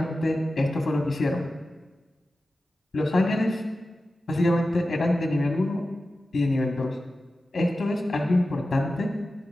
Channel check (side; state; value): both; normal; correlation 0.94